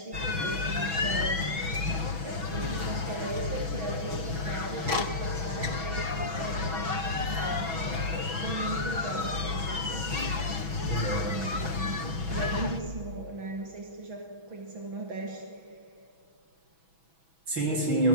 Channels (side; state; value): left; late; 6.1 ms